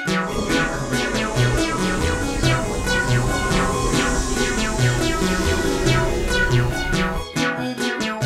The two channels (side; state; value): both; identical; correlation 1.00